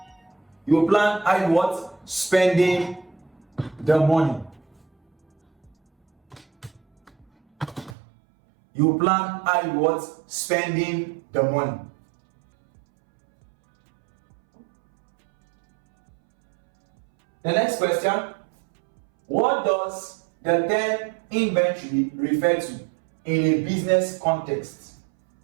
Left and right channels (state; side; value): drops out; left; at 8.0 s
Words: You will plan how you what? Spending the money. You plan how you what? Spending the money. The next question. What does the term inventory refer to in a business context?